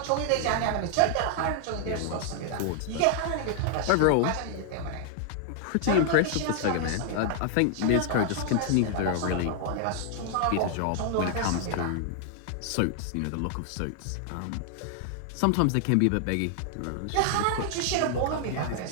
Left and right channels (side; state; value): both; different; correlation -0.01